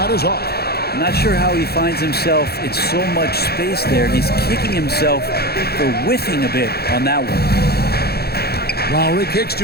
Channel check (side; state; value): right; late; 0.46 ms